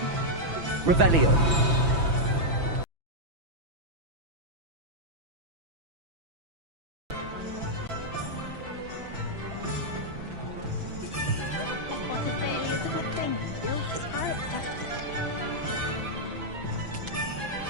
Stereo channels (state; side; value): late; left; 6.0 ms